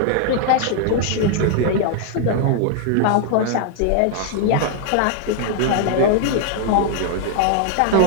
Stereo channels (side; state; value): both; different; correlation 0.00